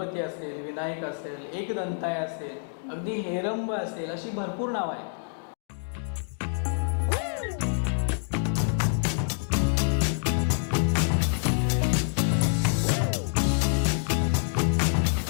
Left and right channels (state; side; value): silent; right; digital silence